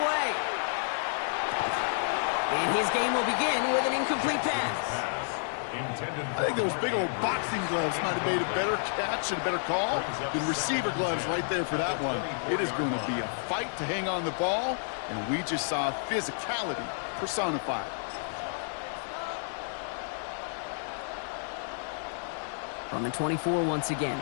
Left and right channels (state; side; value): silent; right; 58 dB below the other